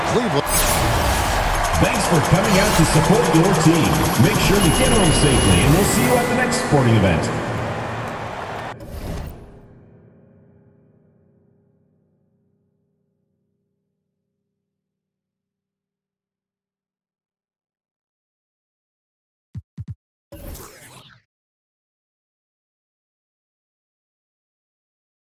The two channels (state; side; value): identical; both; correlation 1.00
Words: Cleveland. Thanks for coming out to support your team. Make sure to get home safely, and we'll see you at the next sporting event.